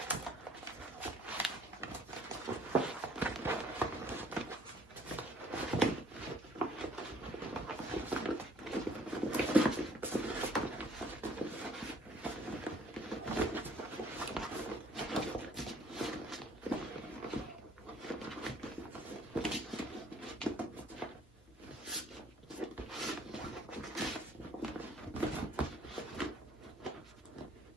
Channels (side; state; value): both; normal; correlation 0.58